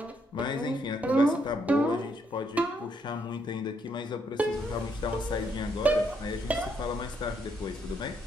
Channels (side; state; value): both; normal; correlation 0.74